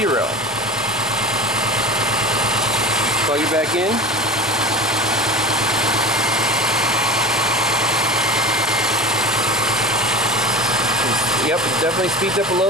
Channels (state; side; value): normal; both; correlation 0.33